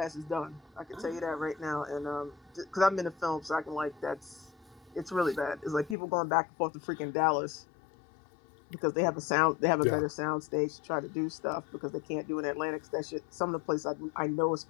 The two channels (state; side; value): drops out; right; at 6.0 s